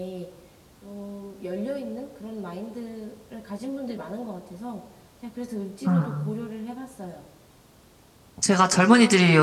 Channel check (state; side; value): identical; both; correlation 1.00